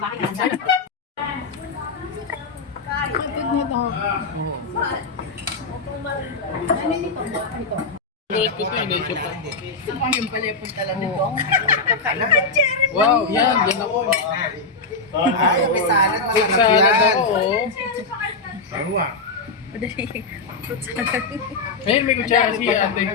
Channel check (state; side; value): quieter; right; 3.9 dB